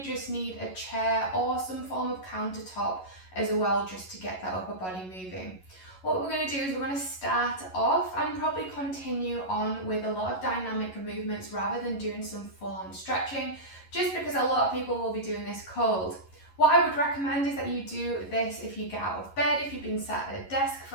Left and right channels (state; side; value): late; right; 11 ms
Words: just need a chair or some form of countertop as well, just to get that upper body moving. What we're going to do is we're going to start off and probably continue on with a lot of dynamic movements rather than doing some full-on stretching, just because a lot of people will be doing this cold. What I would recommend is that you do this if you get out of bed, if you've been sat at a desk